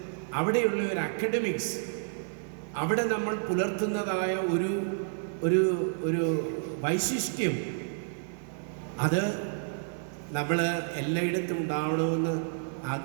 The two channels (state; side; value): silent; left; digital silence